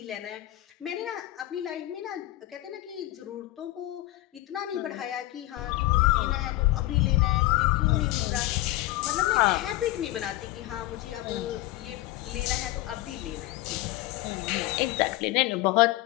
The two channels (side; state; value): right; quieter; 17.3 dB